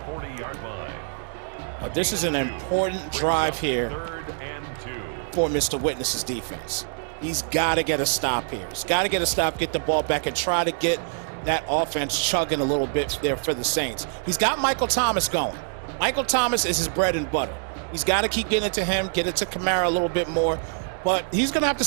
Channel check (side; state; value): left; silent; digital silence